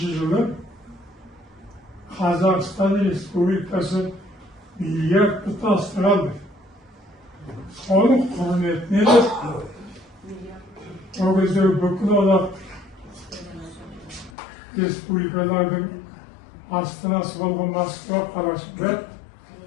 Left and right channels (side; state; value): right; drops out; at 14.3 s